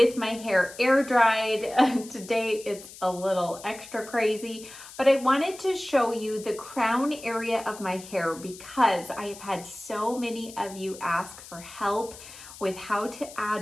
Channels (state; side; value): noise; left; hiss, 16 dB below the sound